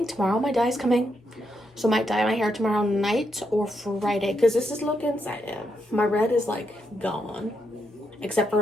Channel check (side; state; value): both; normal; correlation 0.81